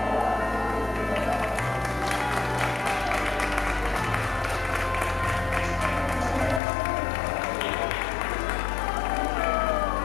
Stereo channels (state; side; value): drops out; right; at 6.6 s